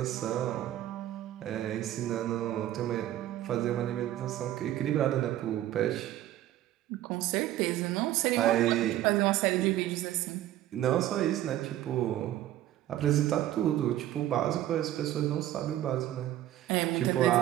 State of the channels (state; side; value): quieter; left; 13.4 dB